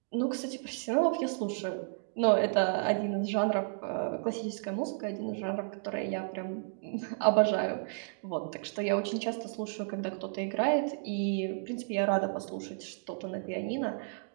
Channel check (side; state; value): left; silent; digital silence